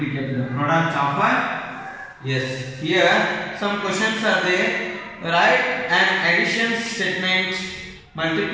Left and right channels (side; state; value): both; identical; correlation 1.00